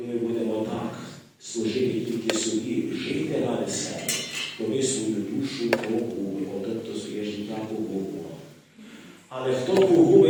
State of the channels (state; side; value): identical; both; correlation 1.00